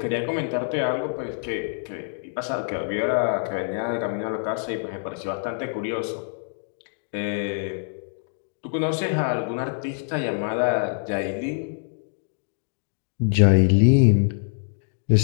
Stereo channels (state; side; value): silent; right; digital silence